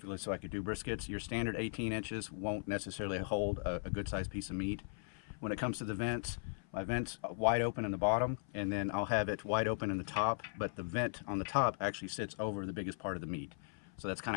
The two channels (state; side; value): silent; right; 52 dB below the other